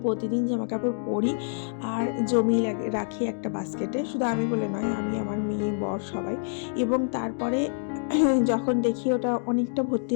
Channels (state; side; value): silent; right; digital silence